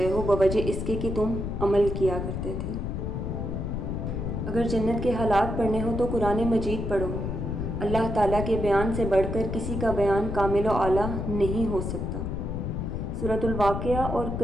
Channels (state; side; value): noise; left; rumble, 3 dB below the sound